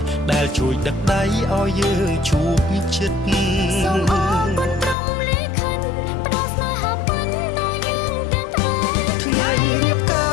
ដែលជួយដឹកដៃឲ្យយើងជួបជិតសូមអរគុណព្រមលេខិនផ្ដល់ស្នេហាពិនដល់យើងទាំងថ្ងៃរៀបកា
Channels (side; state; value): right; drops out; at 5.0 s